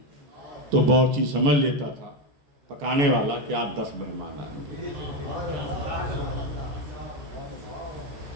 تو باورچی سمجھ لیتا تھا پکانے والا کہ آپ 10 مہمان آئیں.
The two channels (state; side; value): late; left; 14 ms